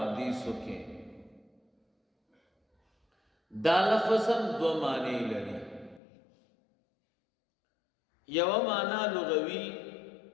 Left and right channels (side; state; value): right; drops out; at 6.0 s